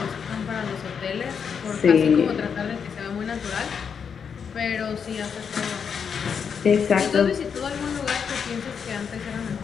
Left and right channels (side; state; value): right; quieter; 6.7 dB